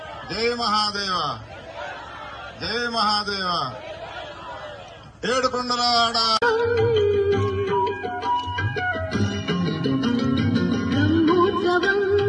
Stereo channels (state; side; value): identical; both; correlation 1.00